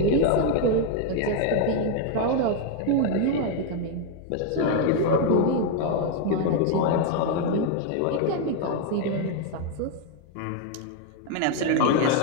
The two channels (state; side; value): different; both; correlation 0.01